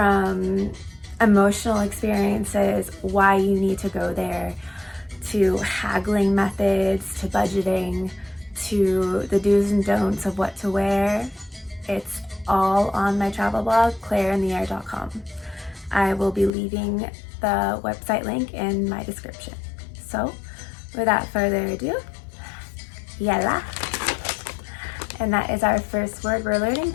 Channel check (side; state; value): right; drops out; at 16.5 s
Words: emotional experiences, why you need to go there, to haggling methods, to budgeting, to the do's and don'ts of what to wear, it's all on my travel blog, ClaireInTheAir.com. I will be leaving the website link in my description. So without further ado, Yela. And that is our first word we're learning